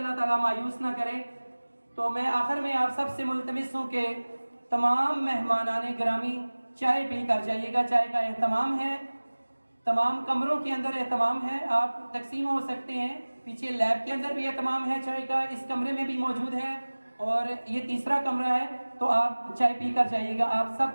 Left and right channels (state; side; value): inverted; both; correlation -1.00